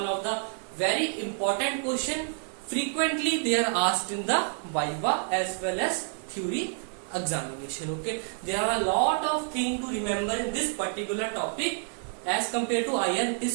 of the very important question. Frequently they are asked in the Viva as well as theory examination. Okay, there are a lot of things to remember in this particular topic. As compared to IR, it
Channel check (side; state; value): left; silent; 59 dB below the other